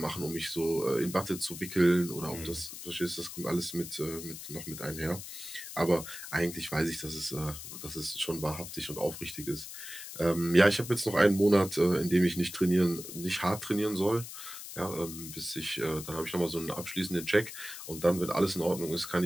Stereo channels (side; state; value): left; noise; hiss, 11 dB below the sound